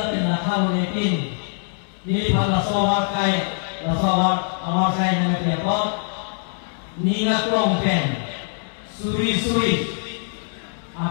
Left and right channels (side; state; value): right; silent; digital silence